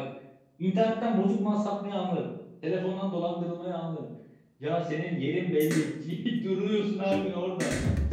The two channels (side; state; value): both; identical; correlation 1.00